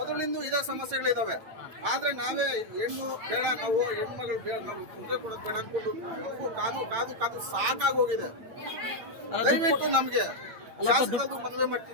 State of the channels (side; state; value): left; late; 8.9 ms